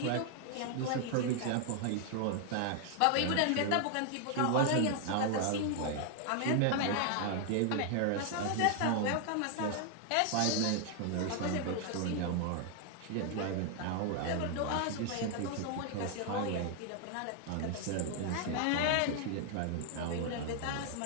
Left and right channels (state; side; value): different; both; correlation 0.00